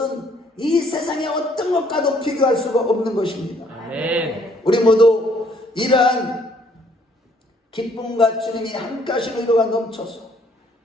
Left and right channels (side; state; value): both; normal; correlation 0.64